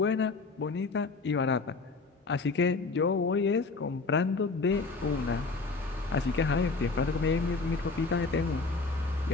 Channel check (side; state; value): right; quieter; 4.0 dB